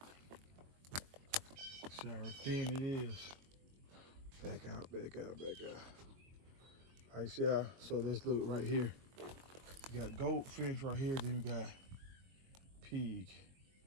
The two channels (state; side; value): late; left; 22 ms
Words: See how thin it is. Back out, back out, back out. All right, see how, so let's look right here. You got goat fence right here, then you got pig.